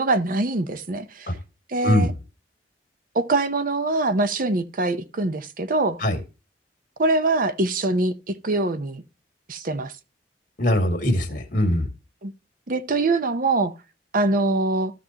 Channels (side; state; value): both; normal; correlation 0.26